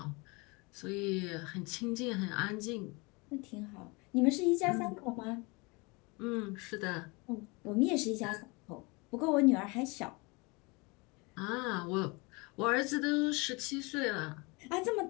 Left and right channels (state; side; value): quieter; right; 27.5 dB